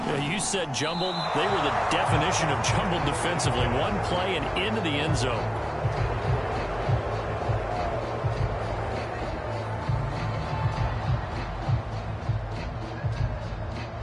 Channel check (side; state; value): both; identical; correlation 1.00